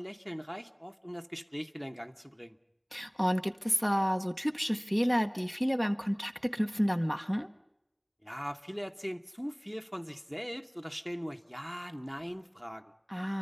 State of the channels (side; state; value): both; identical; correlation 1.00